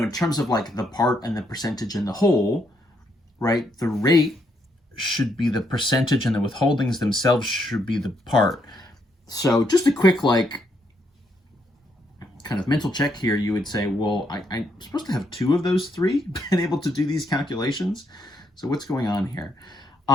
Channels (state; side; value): normal; both; correlation 0.75